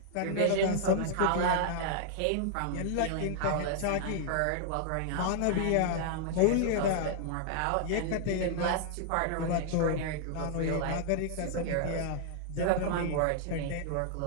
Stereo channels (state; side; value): different; both; correlation -0.01